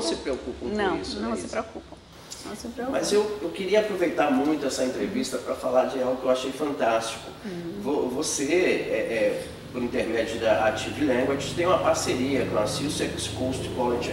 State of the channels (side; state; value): both; identical; correlation 1.00